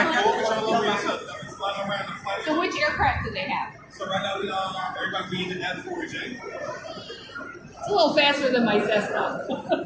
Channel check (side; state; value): both; identical; correlation 1.00